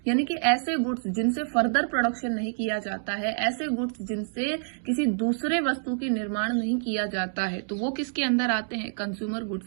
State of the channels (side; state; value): left; silent; digital silence